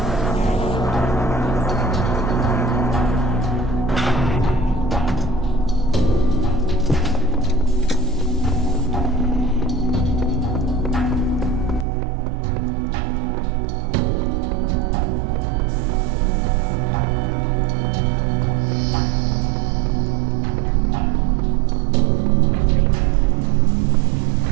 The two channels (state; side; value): drops out; left; at 11.9 s